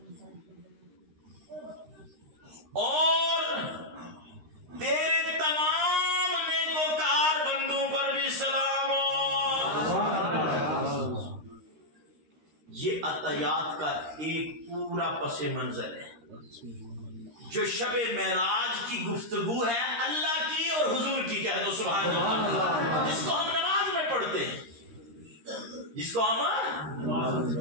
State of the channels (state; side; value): late; left; 13 ms